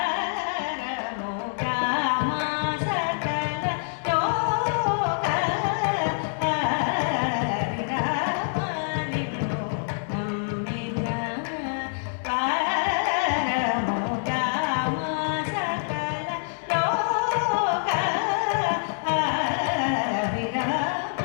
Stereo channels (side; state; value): right; silent; 59 dB below the other